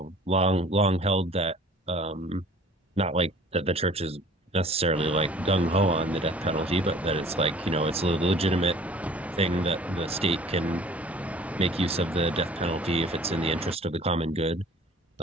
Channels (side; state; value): both; normal; correlation 0.50